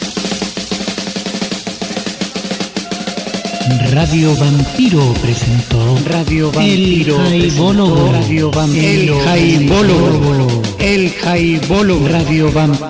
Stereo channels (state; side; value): identical; both; correlation 1.00